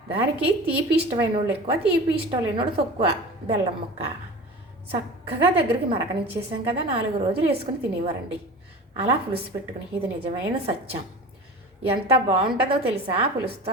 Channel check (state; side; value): normal; both; correlation 0.36